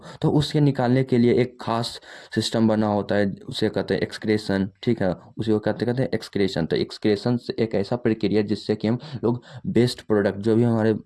उसके निकालने के लिए एक खास सिस्टम बना होता है, उसे कहते हैं एक्सक्रेशन, ठीक है? उसे वो कहते कहते हैं एक्सक्रेशन। तो एक्सक्रेशन एक ऐसा प्रक्रिया जिससे कि हम लोग बेस्ट प्रोडक्ट, जो भी हमारे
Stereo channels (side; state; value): both; identical; correlation 1.00